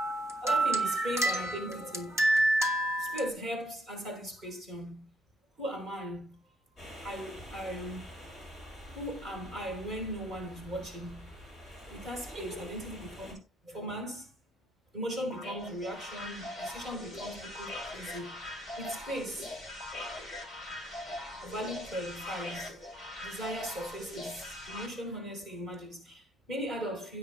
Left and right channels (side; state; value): both; normal; correlation 0.69